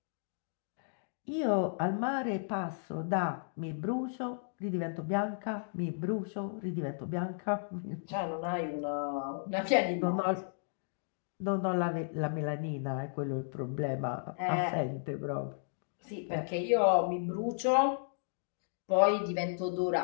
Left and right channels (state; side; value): silent; right; digital silence